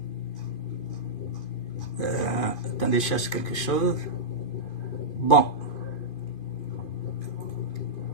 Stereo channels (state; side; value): late; right; 2.5 ms